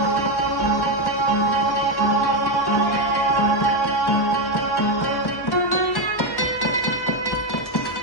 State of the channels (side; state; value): right; late; 1.1 ms